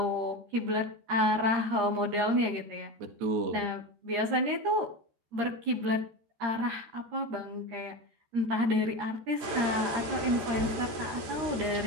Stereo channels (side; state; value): left; late; 13 ms